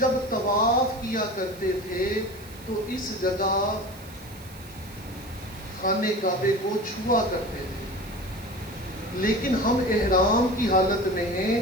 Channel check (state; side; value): noise; right; hiss, 21 dB below the sound